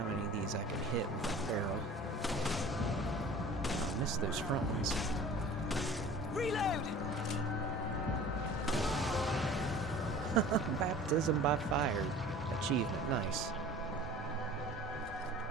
many of these I can hit with a barrel. I missed those front ones. Reload! Baptism by fire. Achievement. Nice.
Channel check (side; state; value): both; normal; correlation 0.43